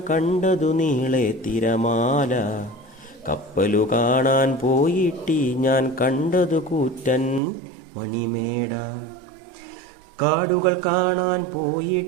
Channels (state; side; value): drops out; left; at 7.4 s